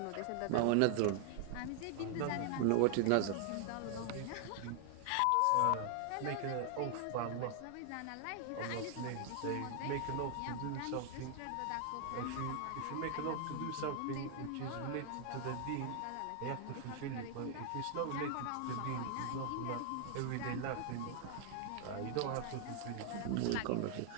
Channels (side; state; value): both; different; correlation 0.00